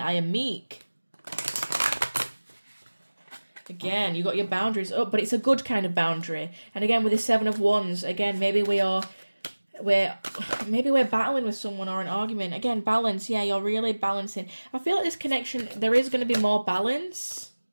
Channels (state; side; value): inverted; both; correlation -1.00